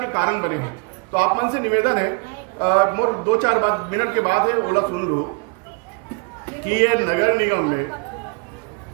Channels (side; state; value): left; quieter; 33.6 dB